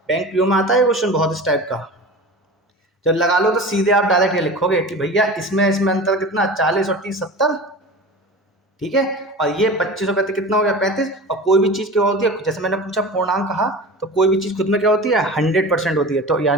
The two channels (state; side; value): normal; both; correlation 0.34